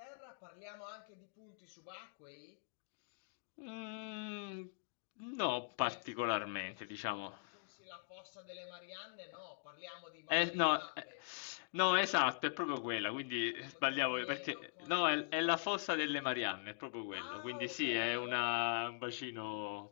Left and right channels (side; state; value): right; silent; digital silence